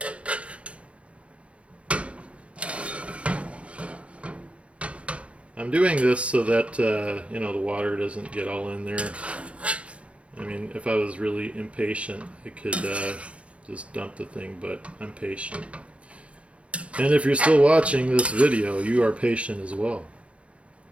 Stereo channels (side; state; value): left; late; 0.062 ms